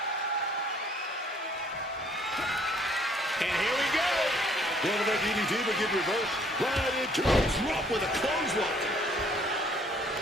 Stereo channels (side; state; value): both; normal; correlation 0.61